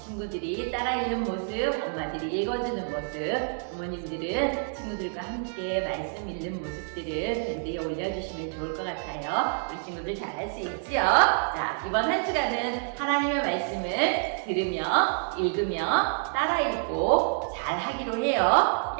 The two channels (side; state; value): left; silent; digital silence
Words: 따라 읽는 모습, 엄마들이 읽어주는 모습, 부모님들은 친구들과 함께 말씀 읽는 모습들을 밴드에 올려주시면 좋을 것 같아요. 우리 친구들 잘할 수 있지요? 자, 이번 한 주간은 하나님의 말씀을 들으며 읽으며 따라 읽고 잘 하기로 해요.